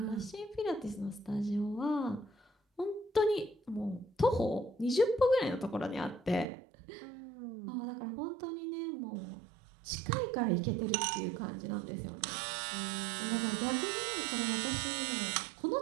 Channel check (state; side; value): drops out; left; at 6.5 s